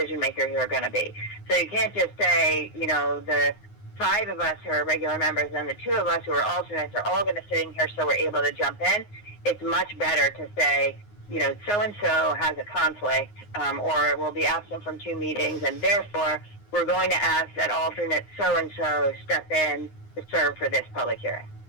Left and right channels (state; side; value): late; right; 9.6 ms